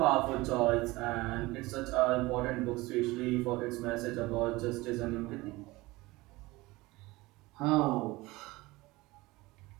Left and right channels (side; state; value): left; quieter; 21.0 dB